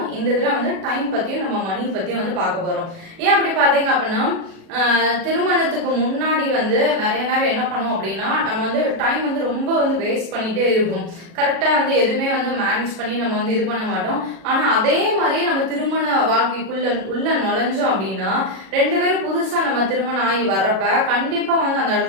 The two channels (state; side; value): late; left; 37 ms